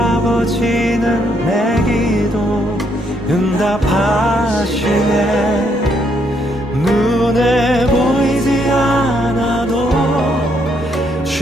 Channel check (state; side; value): normal; both; correlation 0.73